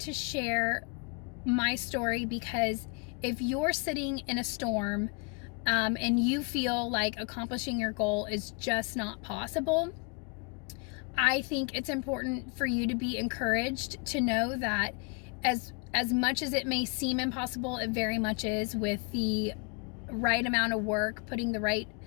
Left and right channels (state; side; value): quieter; right; 33.1 dB